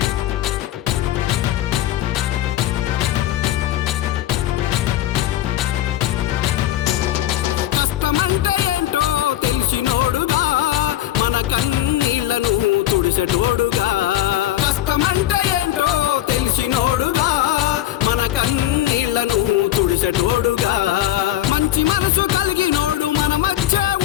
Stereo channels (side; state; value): right; quieter; 13.6 dB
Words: తుడిసెటోడుగా కష్టమంటే ఏంటో తెలిసినోడుగా మన కన్నీళ్లను తుడిసెటోడుగా మంచి మనసు కలిగినోడు మన మధ్య